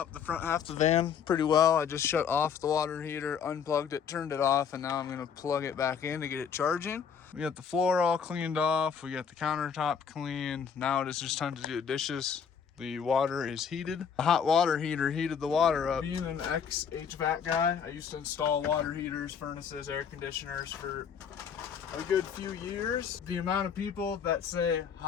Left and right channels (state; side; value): quieter; right; 7.2 dB